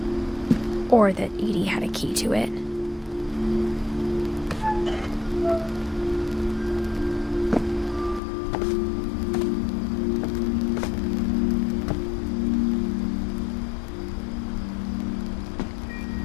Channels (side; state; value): right; drops out; at 8.2 s